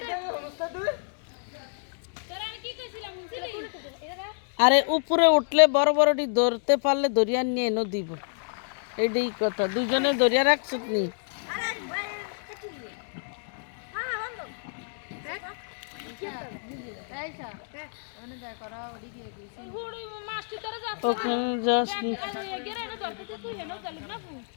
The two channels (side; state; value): right; silent; digital silence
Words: তোরা আমি কি কইছিলাম বুঝলি আরে উপরে উঠলে বড় বড়টি ধরতে পারলে দরিয়া নিয়ে এনে দিব এটাই কথা দুজনে দরিয়া রাখছত নি হুড়ি মাছটি তোরা যাচ্ছে ওখানে যাস নি। গেরে না ধরতে তুই হেনো চলিস না ফু